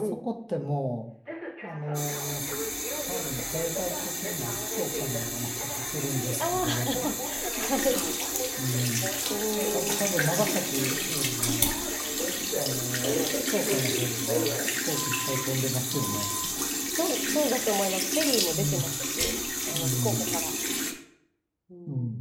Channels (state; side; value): identical; both; correlation 1.00